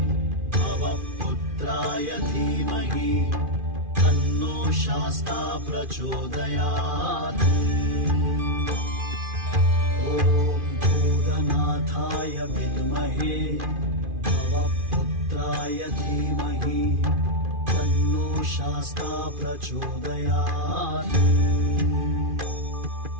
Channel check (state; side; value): late; left; 2.4 ms